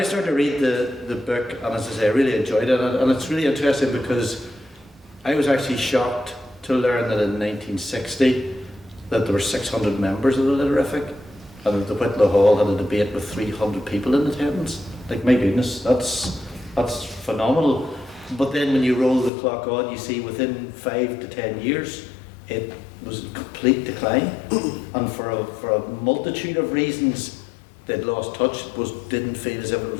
started to read the book, and as I say, I really enjoyed it, and it's really interesting because I was actually shocked to learn that in 1960 that there were 600 members of the Literific, and that the Whitlow Hall had a debate with 300 people in attendance. Like, my goodness, that's phenomenal. But then when you roll the clock on, you see within 5 to 10 years, it was in complete decline, and for a multitude of reasons, they'd lost touch, didn't feel as if it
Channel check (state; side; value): drops out; right; at 19.3 s